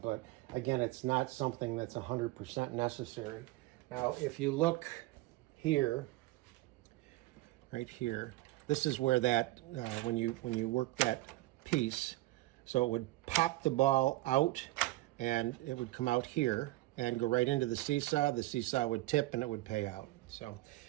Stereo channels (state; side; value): quieter; left; 18.5 dB